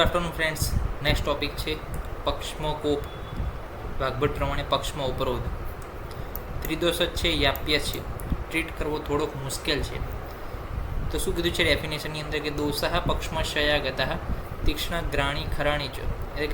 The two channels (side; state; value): both; identical; correlation 1.00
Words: afternoon friends. Next topic છે પક્ષમાં કોપ. વાગ્ભટ પ્રમાણે પક્ષમાં ઉપરોધ. ત્રિદોષ જ છે, યાપ્ય છે, ટ્રીટ કરવો થોડોક મુશ્કેલ છે. તો શું કીધું છે ડેફિનેશનની અંદર કે દોષ પક્ષમાં શયાગતા તીક્ષ્ણ ગ્રાણી ખરાણી ચ, એટલે